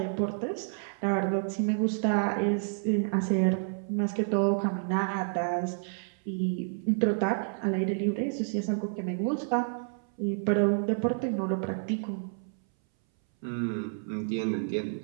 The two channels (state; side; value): silent; left; 58 dB below the other